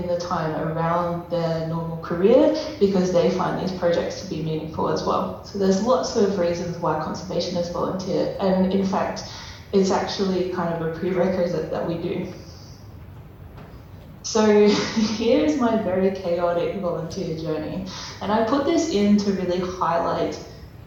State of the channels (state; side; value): identical; both; correlation 1.00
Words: the time around their normal career because they find these projects to be meaningful as well. So there's lots of reasons why conservationists volunteer, and in fact, it's actually kind of a prerequisite that we do. So here's my very chaotic volunteer journey, and I put this in to really highlight